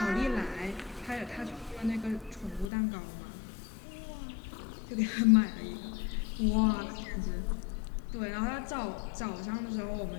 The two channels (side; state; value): right; drops out; at 2.7 s